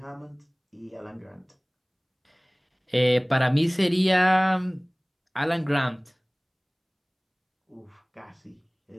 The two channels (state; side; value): identical; both; correlation 1.00